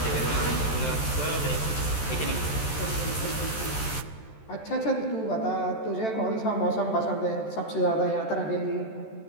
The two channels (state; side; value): late; right; 14 ms